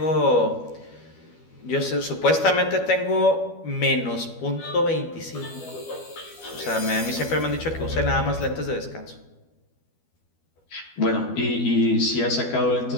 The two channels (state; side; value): late; right; 12 ms